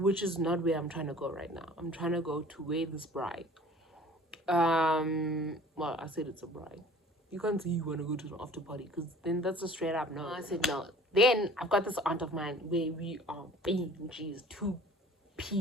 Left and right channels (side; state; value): both; normal; correlation 0.48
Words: is not where I'm trying to go right now. I'm trying to go to where this bride. Well, I said it's a bride. You can't say you want to go to the after party, because then that's a straight up no. I said no. Then I've got this aunt of mine where we are being, she's 2